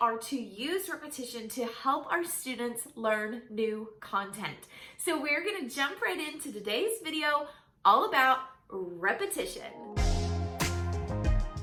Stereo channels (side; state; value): both; identical; correlation 1.00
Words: to use repetition to help our students learn new content. So we're going to jump right into today's video all about repetition.